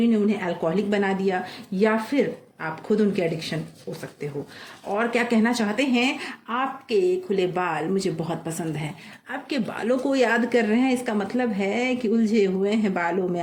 ने उन्हें अल्कोहलिक बना दिया, या फिर आप खुद उनके एडिक्शन हो सकते हो। और क्या कहना चाहते हैं, आपके खुले बाल मुझे बहुत पसंद हैं, आपके बालों को याद कर रहे हैं। इसका मतलब है कि उलझे हुए हैं बालों में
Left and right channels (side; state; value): both; identical; correlation 1.00